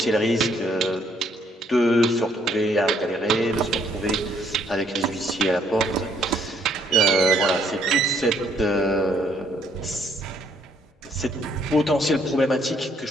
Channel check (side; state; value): both; normal; correlation 0.67